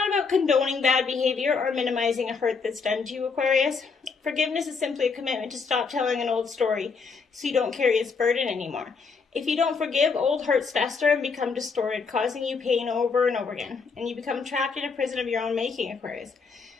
about condoning bad behavior or minimizing a hurt that's done to you, Aquarius. Forgiveness is simply a commitment to stop telling an old story so you don't carry its burden anymore. If you don't forgive, old hurts fester and become distorted, causing you pain over and over again. And you become trapped in a prison of your own making, Aquarius,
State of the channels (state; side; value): quieter; right; 5.0 dB